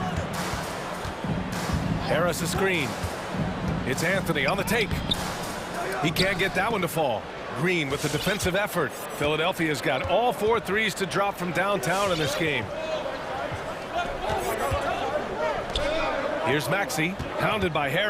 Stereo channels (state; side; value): identical; both; correlation 1.00